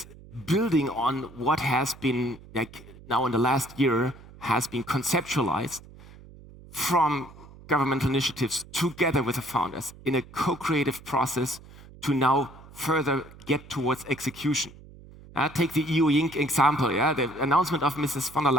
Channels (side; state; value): right; noise; hum, 20 dB below the sound